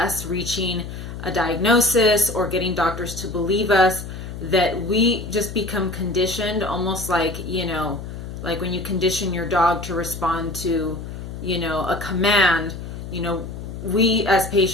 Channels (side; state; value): left; noise; hum, 9 dB below the sound